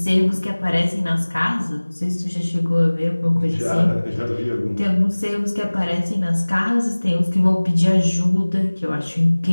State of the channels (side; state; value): both; inverted; correlation -1.00